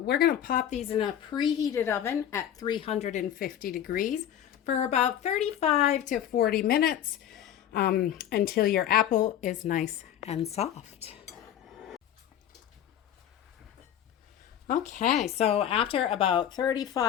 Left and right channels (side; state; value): right; quieter; 10.5 dB